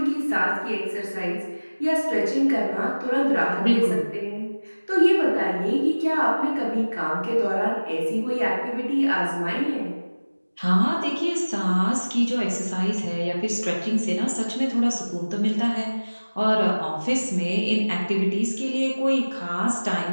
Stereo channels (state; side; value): inverted; both; correlation -1.00